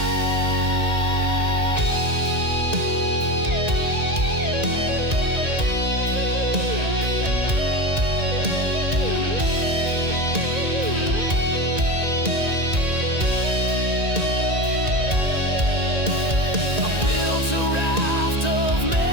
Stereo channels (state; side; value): late; left; 1.9 ms